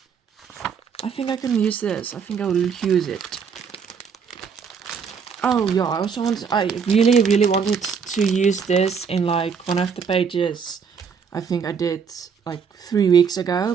I think I can use this. I think I will use it. Oh yeah, I really wanted to use this in like one of the pages I think I did like 3 weeks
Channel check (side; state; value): left; quieter; 6.3 dB